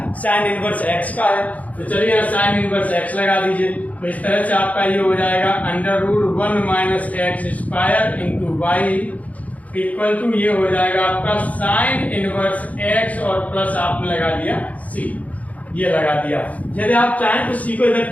साइन इनवर्स x का है। तो चलिए यहाँ साइन इनवर्स x लगा दीजिए, तो इस तरह से आपका ये हो जाएगा under root 1 minus x square into Y equal to ये हो जाएगा आपका साइन इनवर्स x और प्लस आपने लगा दिया c, ये लगा दिया। यदि आप चाहें तो c को इधर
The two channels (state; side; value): late; right; 0.071 ms